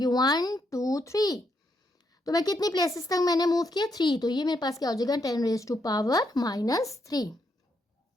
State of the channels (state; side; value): normal; both; correlation 0.78